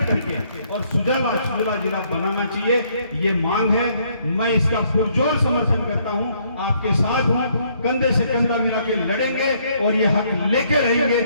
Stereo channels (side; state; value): both; inverted; correlation -0.68